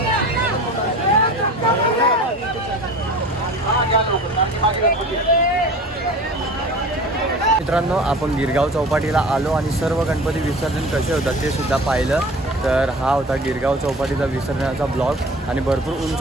मित्रांनो आपण गिरगाव चौपाटीला आलो आणि सर्व गणपती विसर्जन कसे होतात ते सुद्धा पाहिलं. तर हा होता गिरगाव चौपाटीचा विसर्जनाचा ब्लॉग, आणि भरपूर उंच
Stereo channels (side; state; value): both; normal; correlation 0.39